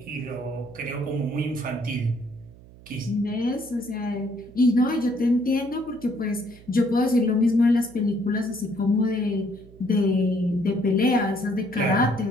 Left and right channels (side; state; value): right; noise; hum, 21 dB below the sound